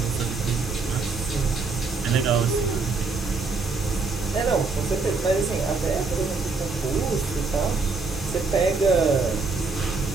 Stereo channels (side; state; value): left; quieter; 4.2 dB